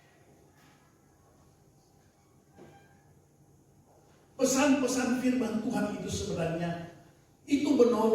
Pesan-pesan firman Tuhan itu sebenarnya itu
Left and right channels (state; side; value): identical; both; correlation 1.00